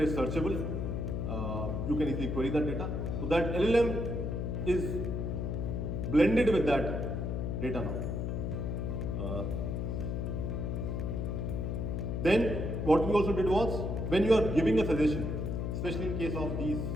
searchable. You can easily query that data. So that LLM is blended with that data now. Then what we also did was, when you are giving a suggestion, especially in case of these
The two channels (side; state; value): left; noise; hum, 1 dB below the sound